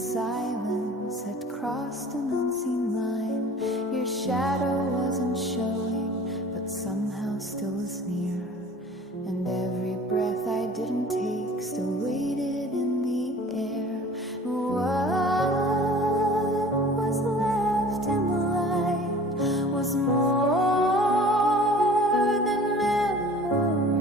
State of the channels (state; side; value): normal; both; correlation 0.45